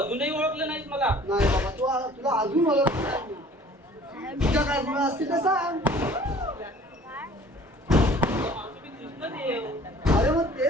ओळखलं नाहीस मला. नाही बाबा तुला अजून मला तुझ्या काय गुण असतील तर सांग मावशी, मी कृष्णदेव. अरे मग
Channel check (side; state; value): both; normal; correlation 0.50